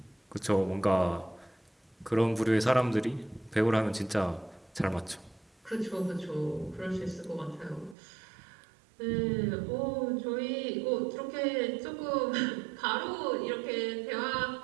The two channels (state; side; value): drops out; left; at 8.0 s